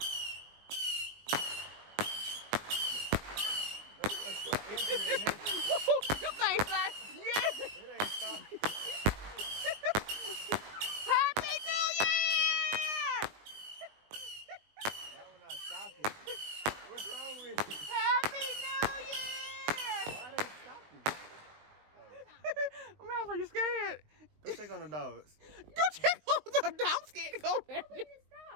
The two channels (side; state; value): left; late; 20 ms